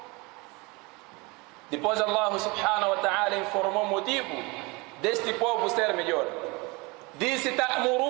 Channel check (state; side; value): quieter; left; 26.2 dB